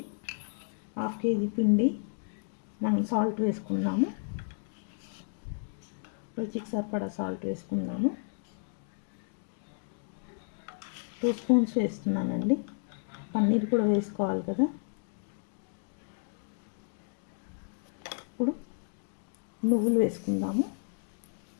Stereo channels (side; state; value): right; silent; digital silence